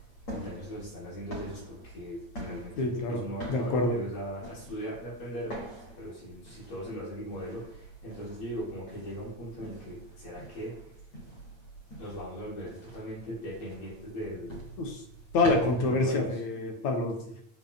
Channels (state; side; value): late; right; 8.8 ms